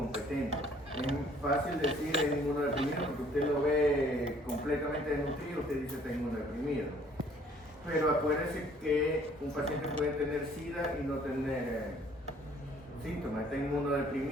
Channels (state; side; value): normal; both; correlation 0.59